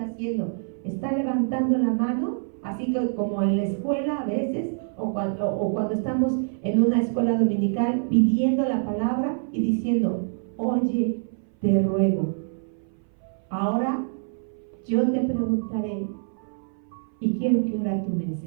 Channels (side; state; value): left; silent; 58 dB below the other